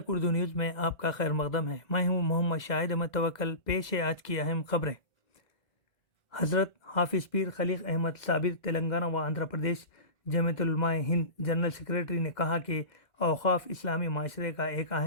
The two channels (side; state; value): right; late; 1.8 ms